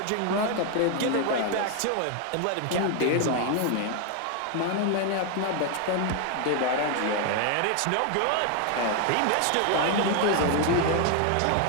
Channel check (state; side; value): different; both; correlation 0.01